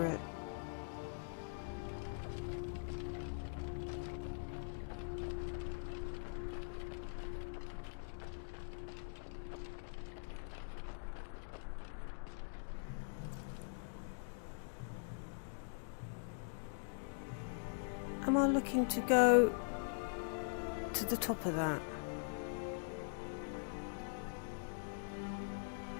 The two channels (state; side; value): silent; right; digital silence